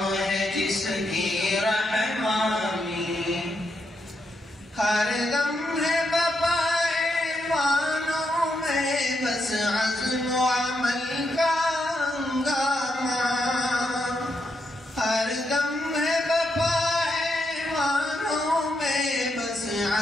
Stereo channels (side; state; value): both; normal; correlation 0.81